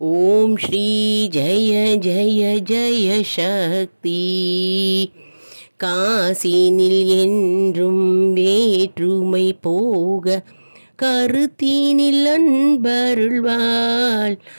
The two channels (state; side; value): inverted; both; correlation -1.00